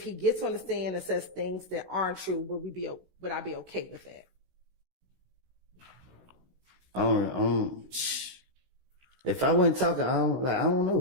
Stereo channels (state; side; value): late; left; 16 ms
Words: he gets on the stand and says things that aren't true, would I be okay with that? If I wasn't talking, I don't